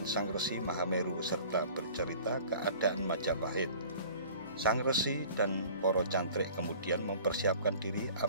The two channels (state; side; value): inverted; both; correlation -0.46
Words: Sang Resi Mahameru serta bercerita keadaan Majapahit. Sang Resi dan para cantrik kemudian mempersiapkan diri